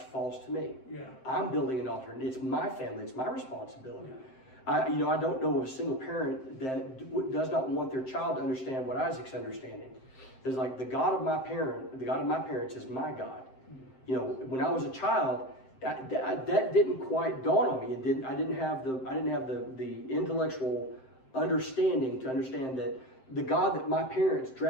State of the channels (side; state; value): right; late; 7.7 ms